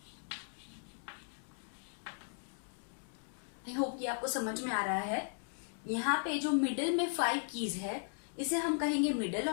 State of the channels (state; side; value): silent; right; digital silence